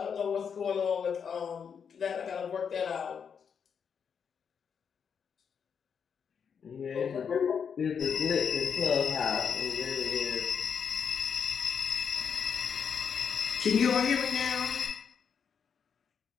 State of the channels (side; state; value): right; quieter; 6.9 dB